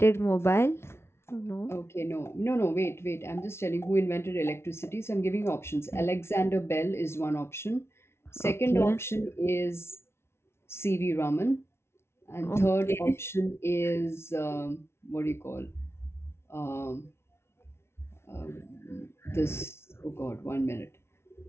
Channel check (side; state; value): right; late; 0.12 ms